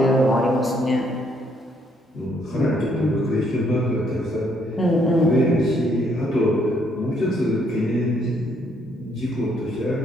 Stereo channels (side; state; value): both; normal; correlation 0.70